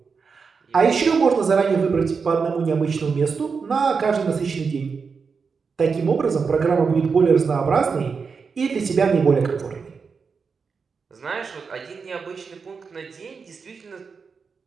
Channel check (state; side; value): quieter; left; 5.4 dB